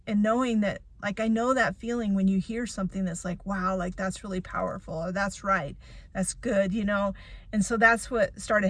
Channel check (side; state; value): both; identical; correlation 1.00